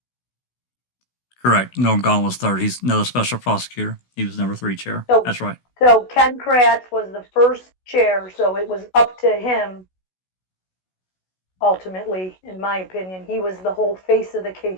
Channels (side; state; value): right; late; 16 ms